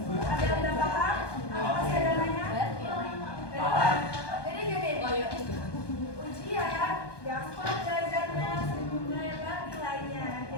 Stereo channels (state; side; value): late; right; 1.2 ms